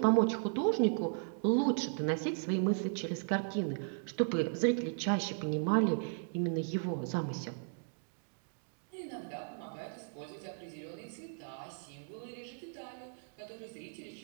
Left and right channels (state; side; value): silent; left; digital silence